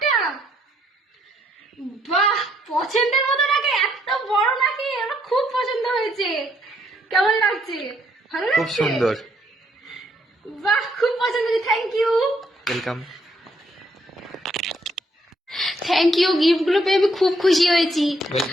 বাহ, পছন্দের মতো নাকি, এত বড় নাকি, আমার খুব পছন্দ হয়েছে। কেমন লাগছে? ভালো লাগছে? খুব সুন্দর। বাহ, খুব পছন্দ হয়েছে। Thank you. Welcome. Thank you, gift গুলো পেয়ে আমি খুব খুশি হয়েছি।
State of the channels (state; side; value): normal; both; correlation 0.71